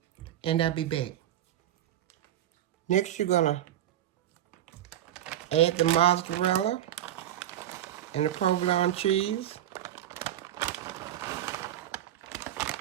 And I'll be back. Next, you're gonna add the mozzarella and the provolone cheese.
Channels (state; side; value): quieter; left; 12.0 dB